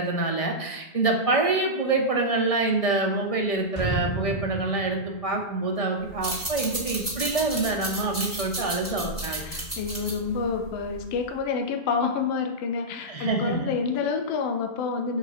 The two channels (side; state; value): right; late; 1.9 ms